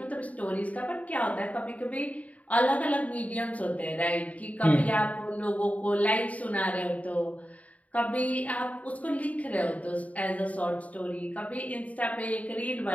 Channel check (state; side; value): late; right; 0.069 ms